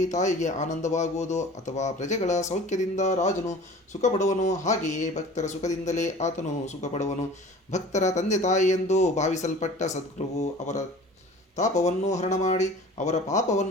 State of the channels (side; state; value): both; normal; correlation 0.43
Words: ತಾಯಿಗೆ ಆನಂದವಾಗುವುದು ಅಥವಾ ಪ್ರಜೆಗಳ ಸೌಖ್ಯದಿಂದ ರಾಜನು ಸುಖಪಡುವನು, ಹಾಗೆಯೇ ಭಕ್ತರ ಸುಖದಿಂದಲೇ ಆತನು ಸುಖಪಡುವನು. ಭಕ್ತರ ತಂದೆ ತಾಯಿ ಎಂದು ಭಾವಿಸಲ್ಪಟ್ಟ ಸದ್ಗುರುವು ಅವರ ತಾಪವನ್ನು ಹರಣ ಮಾಡಿ ಅವರ